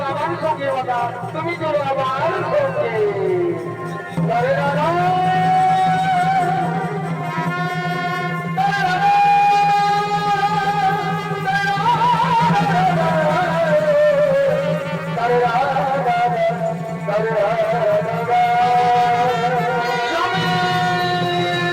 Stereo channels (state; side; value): identical; both; correlation 1.00